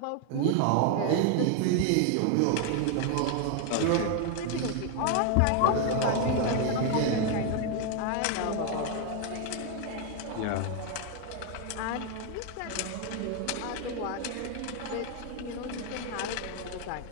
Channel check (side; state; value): both; different; correlation 0.01